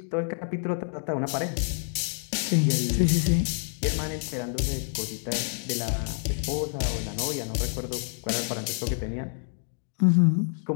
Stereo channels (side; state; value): right; silent; digital silence